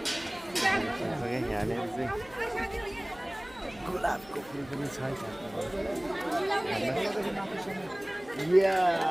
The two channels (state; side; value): noise; left; hum, 22 dB below the sound